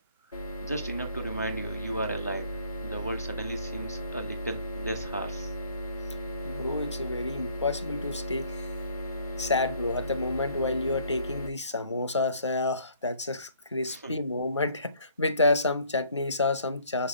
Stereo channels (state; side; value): inverted; both; correlation -0.60